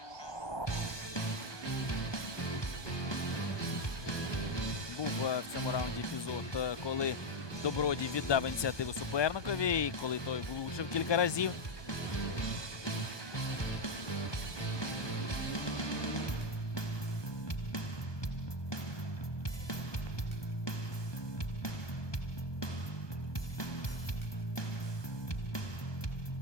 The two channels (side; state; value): right; late; 1.2 ms